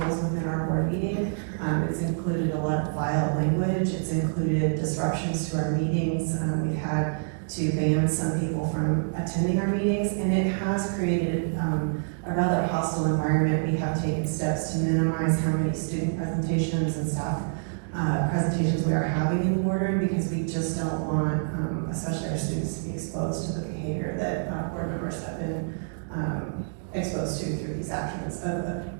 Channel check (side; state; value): left; silent; digital silence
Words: within our board meeting. It's included a lot of violent language. It's included disruptions to our meetings. We've had to ban some people from attending our meetings, and it has created a rather hostile environment. We have taken steps to minimize how many student presentations and staff presentations we are having in the boardroom, because we just don't want, especially our students, to be exposed to the behavior that board members have been exposed to through these actions of